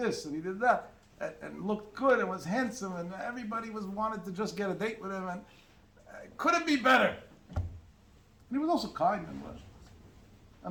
and he did that, and looked good, and was handsome, and everybody wanted to just get a date with him, and couldn't be better. And he was also kind and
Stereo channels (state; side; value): identical; both; correlation 1.00